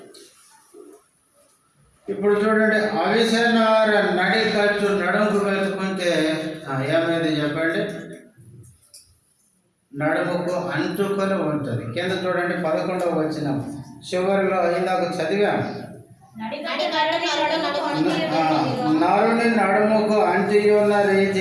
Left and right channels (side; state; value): both; identical; correlation 1.00